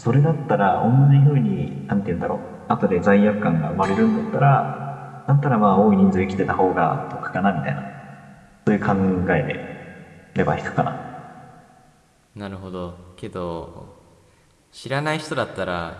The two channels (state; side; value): identical; both; correlation 1.00